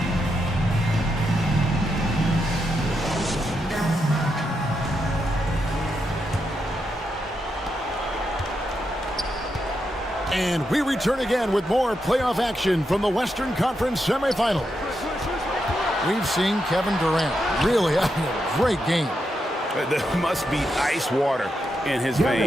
And we return again with more playoff action from the Western Conference semifinals. We've seen Kevin Durant really having a great game. There must be ice water in his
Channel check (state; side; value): normal; both; correlation 0.84